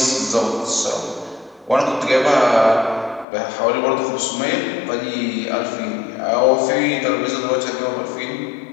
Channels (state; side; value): drops out; right; at 3.2 s